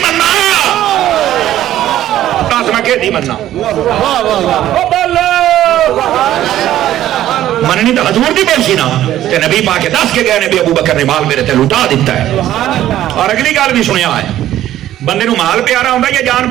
مننا میں کہ دی مننا مننی تو حضور دی بول سی نا تے نبی پاک دس کے گئے نبی ابو بکر نے مال میرے تے لٹا دیتا ہے اور اگلی گل بھی سنیا ہے بندے نو مال پیارا ہوندا یا جان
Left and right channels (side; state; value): left; quieter; 12.9 dB